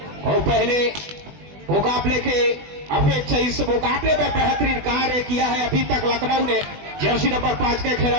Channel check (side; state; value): left; late; 20 ms